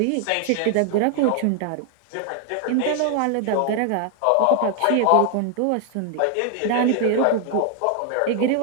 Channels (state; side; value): different; both; correlation 0.00